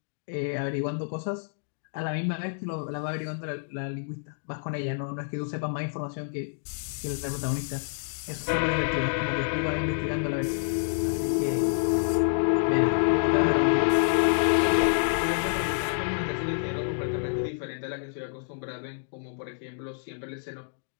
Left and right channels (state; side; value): silent; right; digital silence